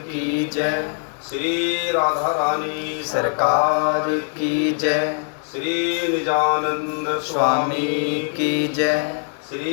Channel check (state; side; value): silent; right; 57 dB below the other